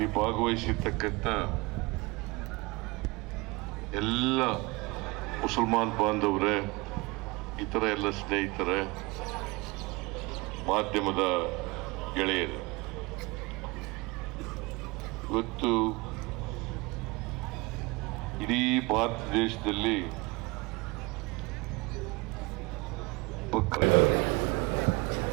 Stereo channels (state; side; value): quieter; left; 25.0 dB